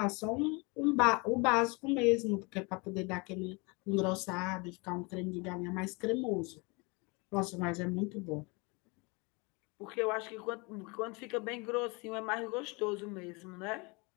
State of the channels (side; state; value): right; quieter; 28.6 dB